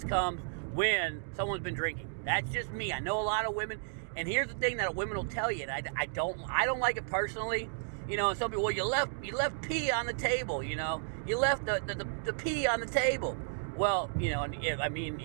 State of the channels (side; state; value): left; silent; digital silence